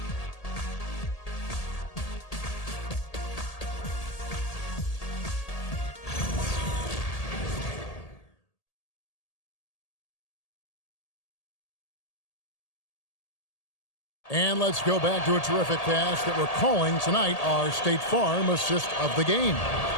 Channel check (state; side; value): late; right; 1.8 ms